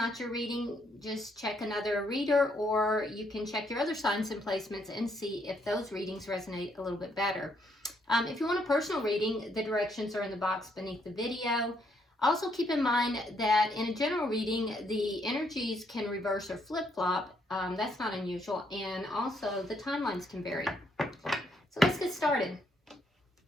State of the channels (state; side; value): normal; both; correlation 0.73